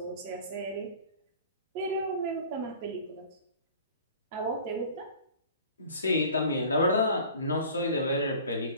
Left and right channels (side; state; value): both; inverted; correlation -0.45